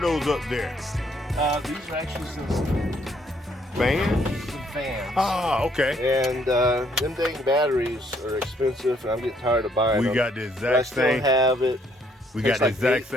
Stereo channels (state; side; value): normal; both; correlation 0.68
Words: up there? These are actually some Fans? fans. Ah, okay. And them dang batteries are expensive, and I'm getting tired of buying We them. got the But I exact still same. have it. We got tastes the like exact meat.